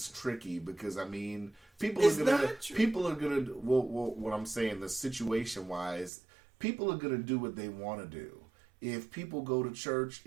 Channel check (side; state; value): left; drops out; at 6.1 s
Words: tricky because I mean, people are gonna. Well, what I'm saying, the situation wise, people are gonna do what they want to do. If people go to church,